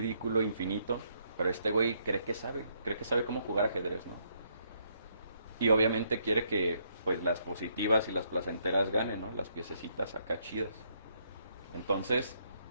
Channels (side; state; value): both; inverted; correlation -0.73